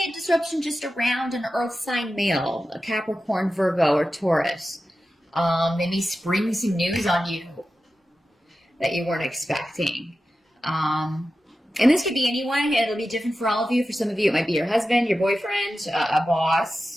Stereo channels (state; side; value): normal; both; correlation 0.93